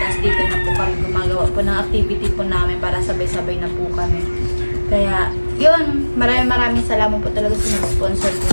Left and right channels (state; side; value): inverted; both; correlation -1.00